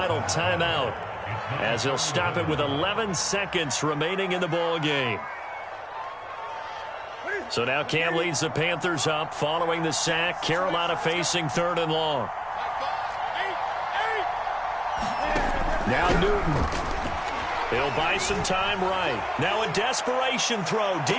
timeout, as he'll stop it with 11 seconds remaining in the ball game. So now Cam leads the Panthers up following the sack. Carolina facing 3rd and long. Now Newton. He'll buy some time right. Now a desperation throw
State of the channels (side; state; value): both; identical; correlation 1.00